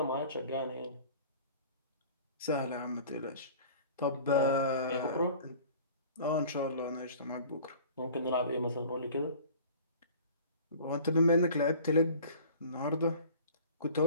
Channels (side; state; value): both; inverted; correlation -0.45